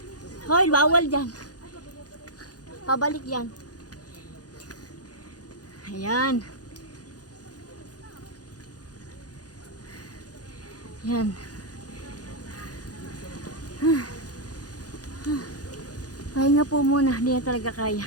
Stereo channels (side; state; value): right; late; 0.68 ms